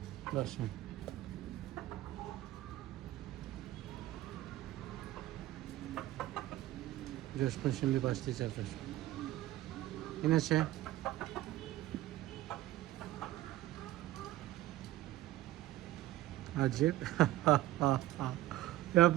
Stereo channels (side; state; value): left; quieter; 15.5 dB